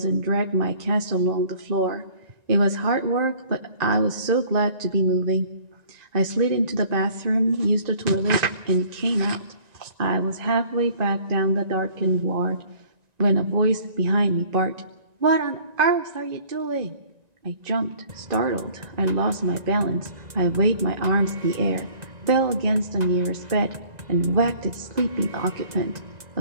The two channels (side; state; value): left; late; 1.9 ms